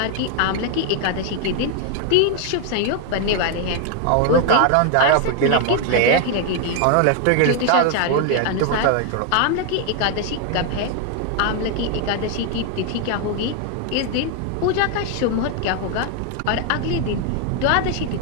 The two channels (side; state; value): both; different; correlation 0.00